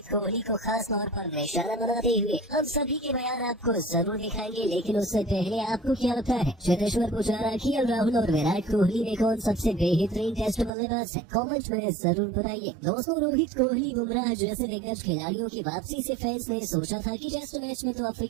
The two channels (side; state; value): left; drops out; at 10.7 s